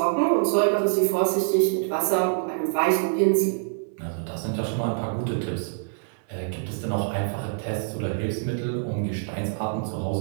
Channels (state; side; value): silent; left; 61 dB below the other